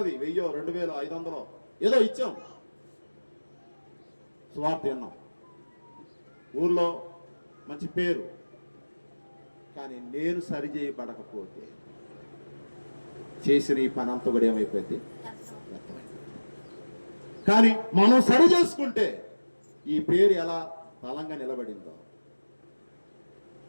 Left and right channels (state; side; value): inverted; both; correlation -1.00